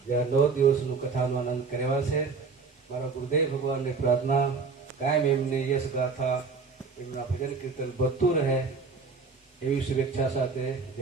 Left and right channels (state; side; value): quieter; left; 4.7 dB